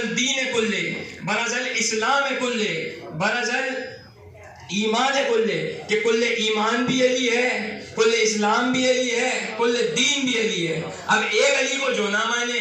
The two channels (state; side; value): identical; both; correlation 1.00